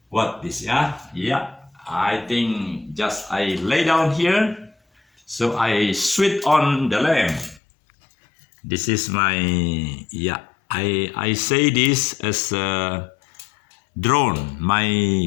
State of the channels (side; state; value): right; drops out; at 7.6 s